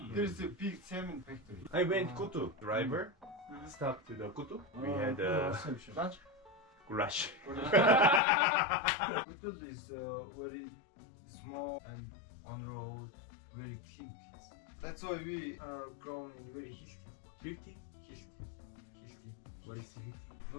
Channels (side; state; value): right; drops out; at 8.2 s